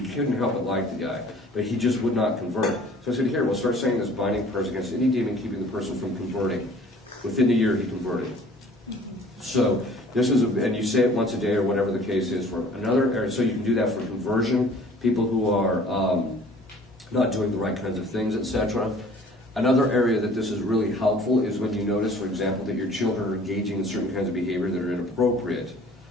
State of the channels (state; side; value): normal; both; correlation 0.51